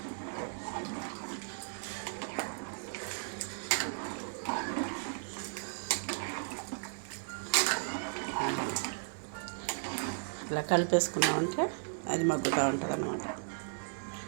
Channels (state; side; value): silent; left; digital silence